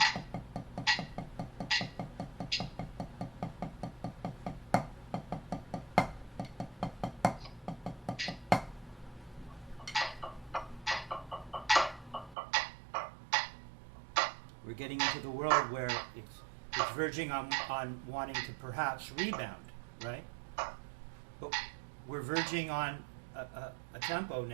We're getting into the world where it's verging on wanting to perhaps rebound, right? But we're verging on a tempo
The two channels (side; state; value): left; drops out; at 12.4 s